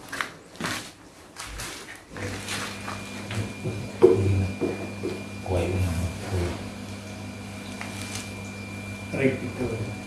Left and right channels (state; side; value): identical; both; correlation 1.00